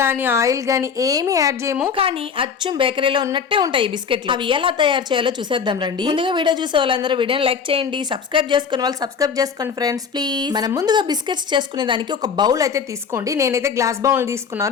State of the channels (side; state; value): right; quieter; 6.3 dB